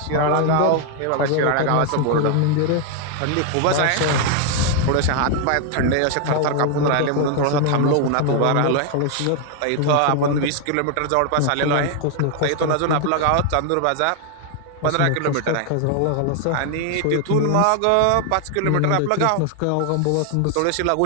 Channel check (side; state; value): both; different; correlation 0.00